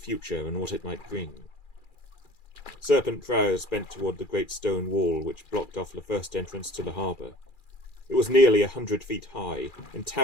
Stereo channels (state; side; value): late; right; 2.4 ms